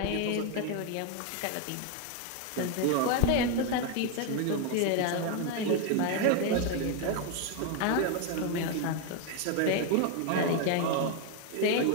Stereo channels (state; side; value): different; both; correlation 0.01